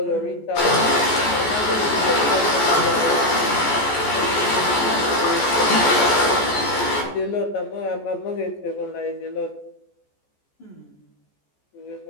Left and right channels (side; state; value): right; late; 14 ms